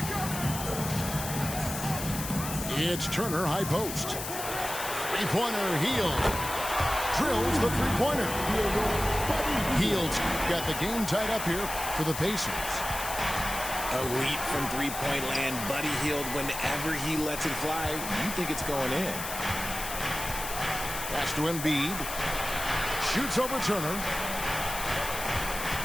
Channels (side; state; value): left; noise; hiss, 7 dB below the sound